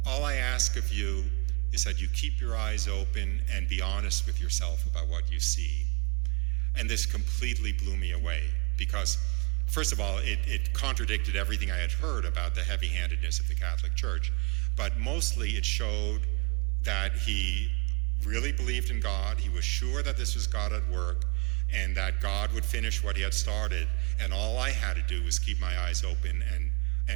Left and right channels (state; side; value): quieter; left; 32.5 dB